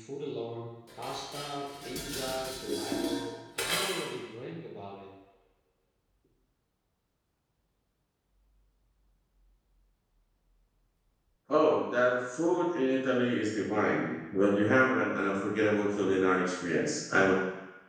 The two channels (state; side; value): identical; both; correlation 1.00